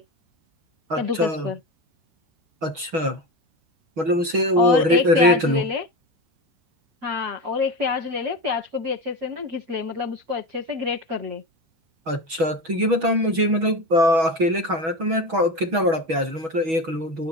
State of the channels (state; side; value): late; left; 6.2 ms